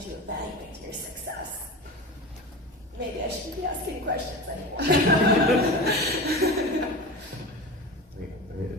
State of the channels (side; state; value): both; normal; correlation 0.29